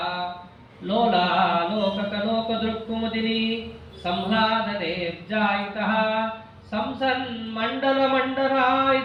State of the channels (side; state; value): both; identical; correlation 1.00